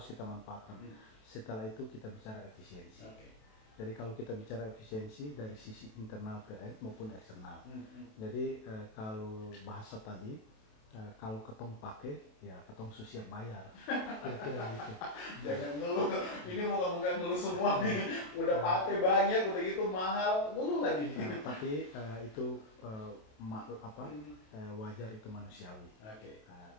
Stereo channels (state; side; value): late; right; 28 ms